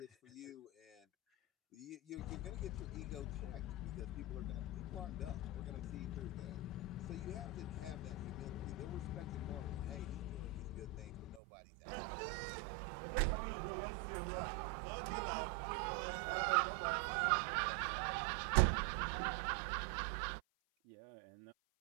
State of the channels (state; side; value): drops out; left; at 11.4 s